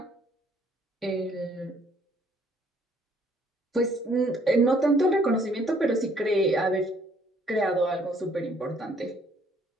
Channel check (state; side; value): normal; both; correlation 0.63